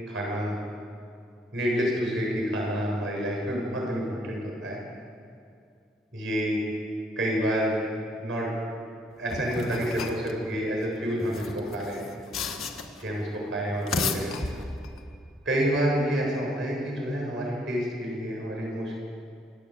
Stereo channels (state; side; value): normal; both; correlation 0.67